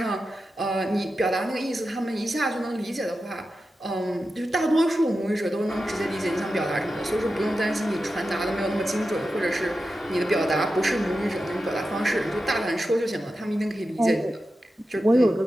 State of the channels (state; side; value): normal; both; correlation 0.91